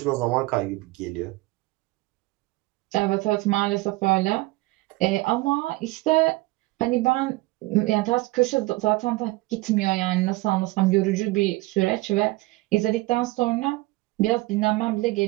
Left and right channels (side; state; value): left; quieter; 21.0 dB